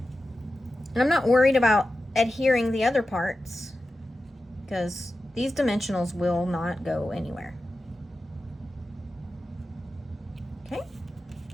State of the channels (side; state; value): both; normal; correlation 0.92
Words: And I'm not worried about adhering the other parts because these dimensionals will not go anywhere. Okay.